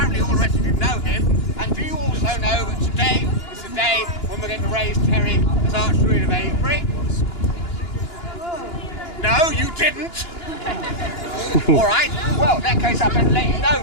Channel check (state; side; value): late; right; 2.9 ms